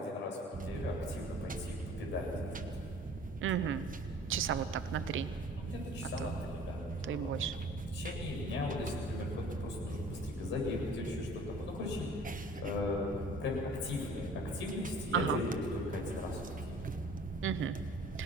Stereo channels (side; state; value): both; normal; correlation 0.49